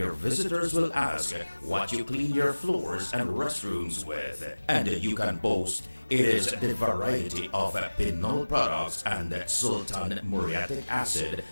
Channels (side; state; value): both; inverted; correlation -1.00